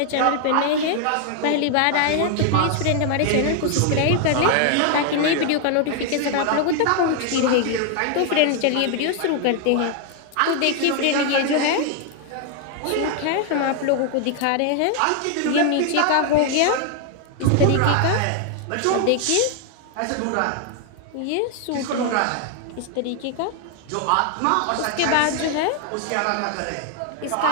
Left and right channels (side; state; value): both; different; correlation 0.00